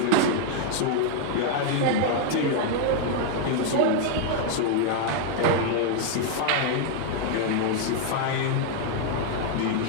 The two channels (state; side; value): different; both; correlation 0.00